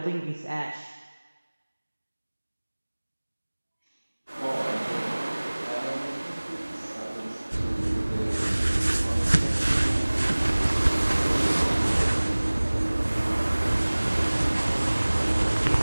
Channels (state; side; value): inverted; both; correlation -1.00